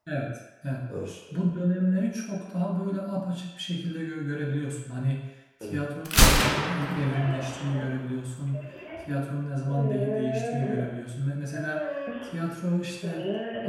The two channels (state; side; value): identical; both; correlation 1.00